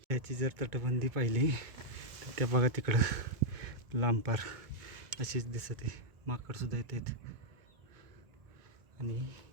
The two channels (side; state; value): left; late; 2.2 ms